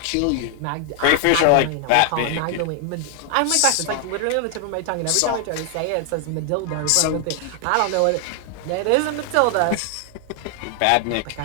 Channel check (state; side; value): different; both; correlation 0.00